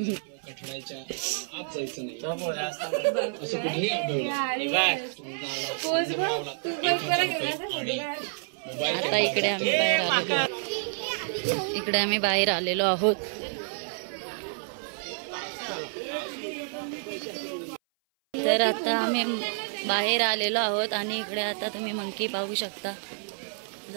कठड्याच्या आत जायचं नाही तो पोरा असता. असं कुठेही आढळलं हे बाय. मोबाईल आता इकडे आम्ही बाहेर आलेलो इकडे आम्ही बाहेर आलेलो आहोत तर आता आम्ही बाहेर आलेलो आहोत आणि इकडे आता तुम्ही मंकी पाहू शकता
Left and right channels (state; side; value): silent; left; 57 dB below the other